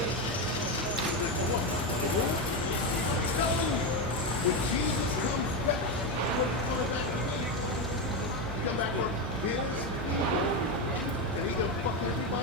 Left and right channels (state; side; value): normal; both; correlation 0.11